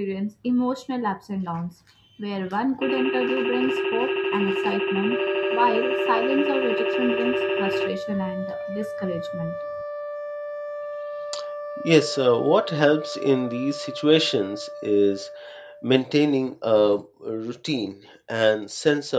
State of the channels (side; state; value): both; identical; correlation 1.00